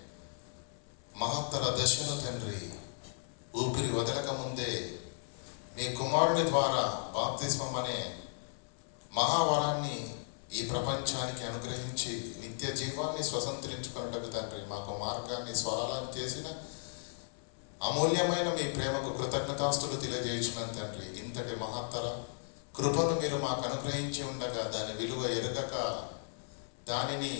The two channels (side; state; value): right; silent; 54 dB below the other